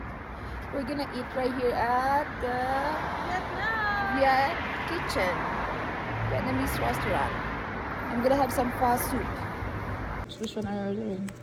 We're gonna eat right here at the Viet Kitchen, Vietnamese restaurant. I'm gonna have some pho soup. Which one are you ordering?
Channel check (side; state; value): both; identical; correlation 1.00